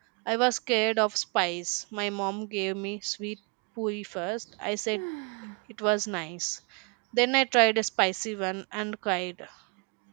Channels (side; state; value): left; quieter; 34.6 dB